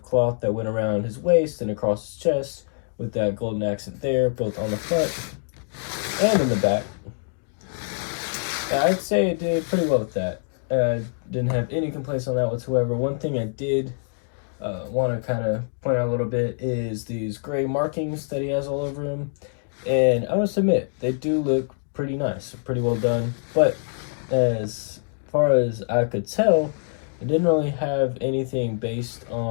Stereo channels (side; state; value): right; silent; digital silence